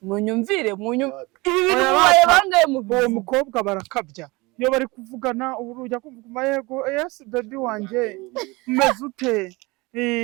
munyumvire ibi bintu baye bangaye mu uwo mukobwa barakabya iyo bari kuvugana ubu ujya kumva yego yes baby wanjye umeze ute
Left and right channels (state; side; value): quieter; left; 23.9 dB